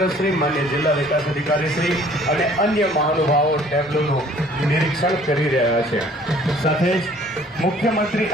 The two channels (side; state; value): both; normal; correlation 0.55